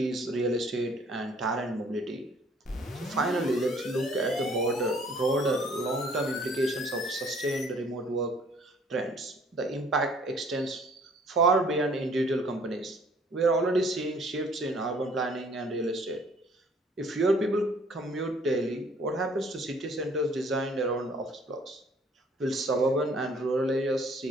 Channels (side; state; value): both; normal; correlation 0.58